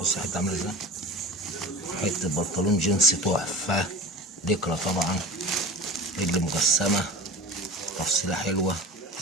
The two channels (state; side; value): normal; both; correlation 0.34